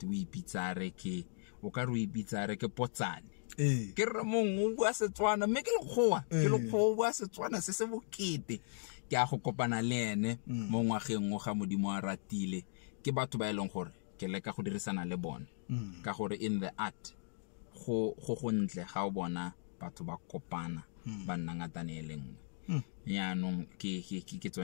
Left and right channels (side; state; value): right; silent; digital silence